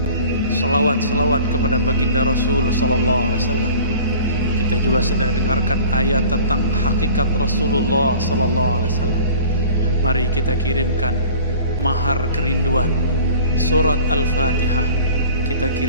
salawat kepada baginda Rasul Sallallahu Alaihi Wasallam, kita juga sedang dengarkan ayat tentang hakikat Rasulullah Sallallahu Alaihi Wasallam. Mari kita kirimkan mahar kerinduan surat Al-Fatihah, kita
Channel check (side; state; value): both; inverted; correlation -0.45